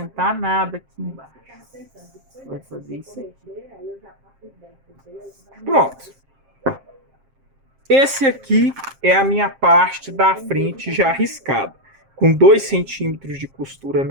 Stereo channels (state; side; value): late; left; 7.5 ms